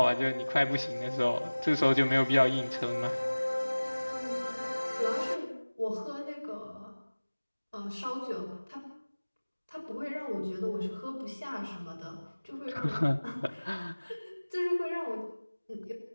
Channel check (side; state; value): both; inverted; correlation -1.00